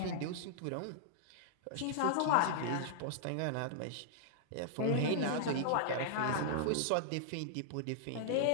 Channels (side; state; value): both; different; correlation -0.01